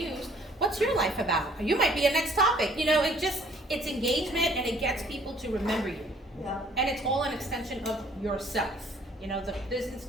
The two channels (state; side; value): normal; both; correlation 0.59